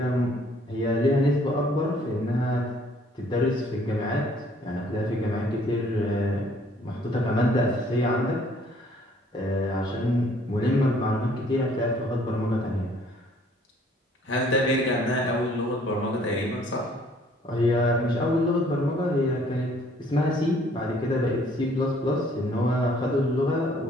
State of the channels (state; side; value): normal; both; correlation 0.60